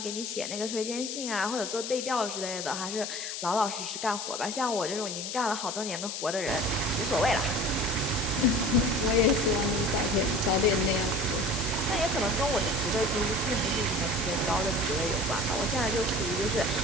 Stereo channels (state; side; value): noise; left; hiss, 5 dB below the sound